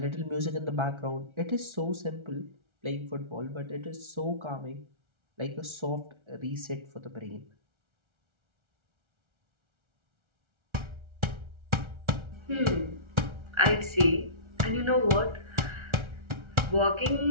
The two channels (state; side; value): late; left; 1.3 ms